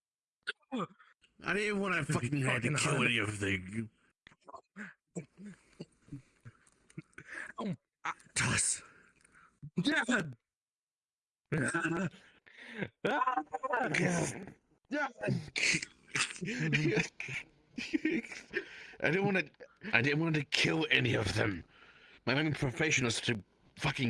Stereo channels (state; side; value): identical; both; correlation 1.00